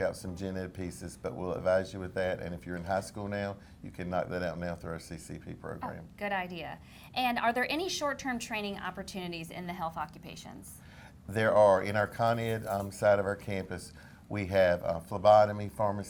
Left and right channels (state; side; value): identical; both; correlation 1.00